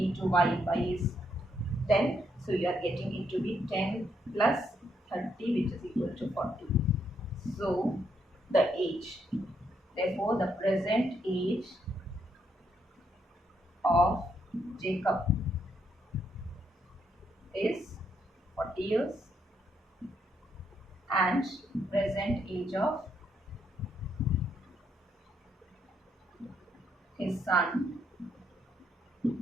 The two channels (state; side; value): normal; both; correlation 0.75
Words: y. Y is 10. So you are getting it to be 10 plus 30, which is equal to 40. So the age, therefore the present age of Jacob is 40 years, and present age of his son